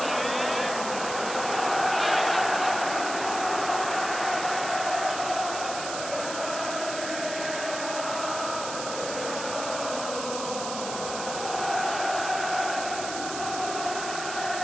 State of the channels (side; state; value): right; noise; hiss, 7 dB below the sound